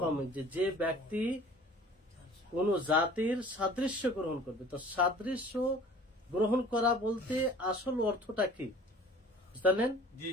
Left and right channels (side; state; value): both; normal; correlation 0.47